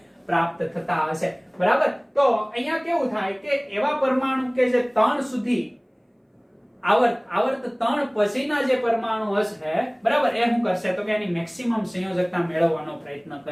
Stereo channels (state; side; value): identical; both; correlation 1.00